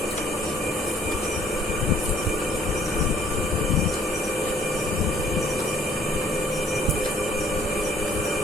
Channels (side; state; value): both; normal; correlation 0.60